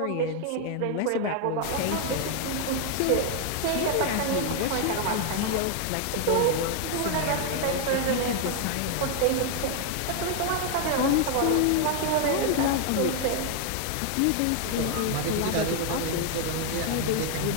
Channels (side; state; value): both; different; correlation 0.00